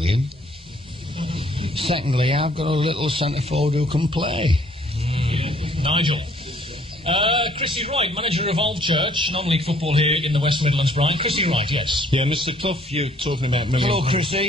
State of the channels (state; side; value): normal; both; correlation 0.61